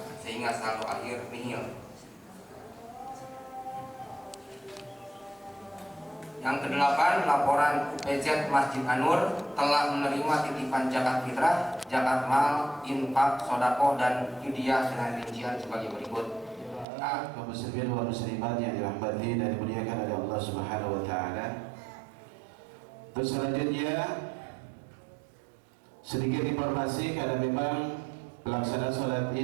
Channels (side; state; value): left; drops out; at 16.9 s